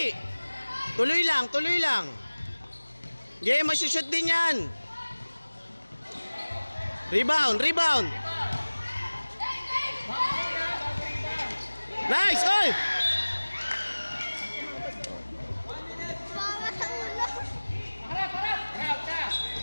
Tuloy lang. Game, masushoot din yan. Rebound! Nice! Oy! Bawa sa ulo! Harap ka!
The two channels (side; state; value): both; inverted; correlation -1.00